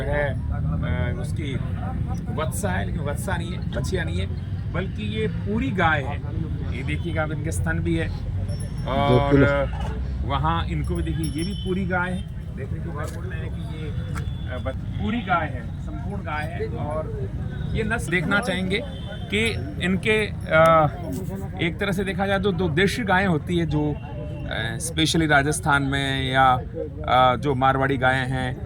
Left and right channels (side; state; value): both; identical; correlation 1.00